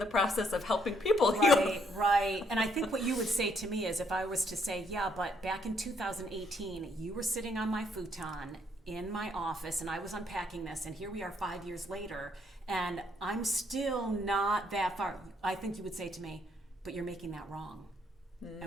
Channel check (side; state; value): both; normal; correlation 0.71